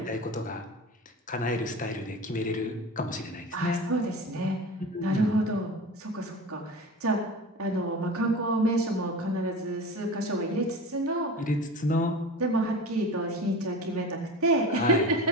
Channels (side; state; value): both; normal; correlation 0.33